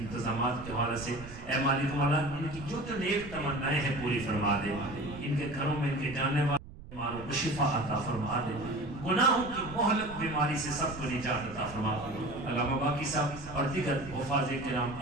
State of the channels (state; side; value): noise; right; rumble, 15 dB below the sound